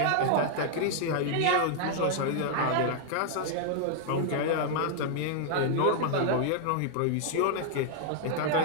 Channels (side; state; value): both; different; correlation -0.01